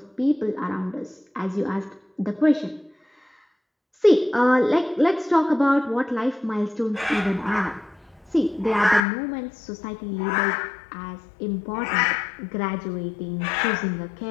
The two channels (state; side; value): drops out; right; at 9.1 s